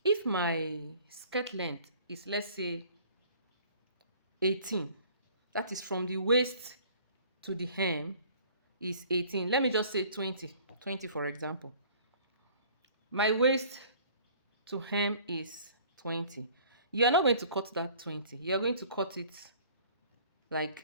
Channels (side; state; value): both; inverted; correlation -0.52